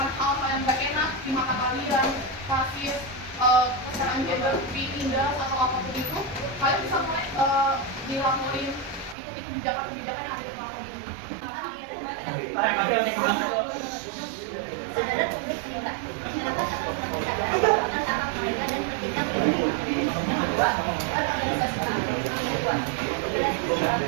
hal-hal yang gak enak di mata kalian, rasis, kesetaraan gender, tindas atau apapun itu, kalian bisa mulai dilaporin ikuti kebijakan-kebijakan yang ada di platform ini. Kesadaran publik meningkat. Masyarakat akan semakin sadar akan hak mereka dan pentingnya melindungi. Kedua, organisasi keagamaan membuat organisasi sosial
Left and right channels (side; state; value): left; drops out; at 9.2 s